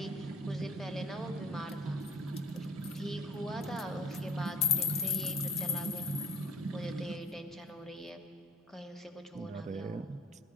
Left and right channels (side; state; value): both; normal; correlation 0.50